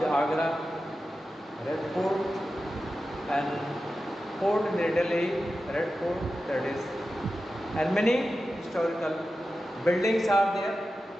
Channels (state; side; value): normal; both; correlation 0.92